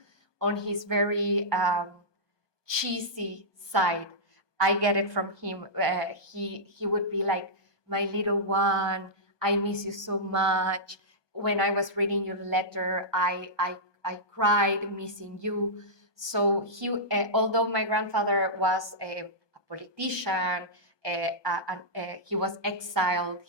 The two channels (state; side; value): late; right; 1.2 ms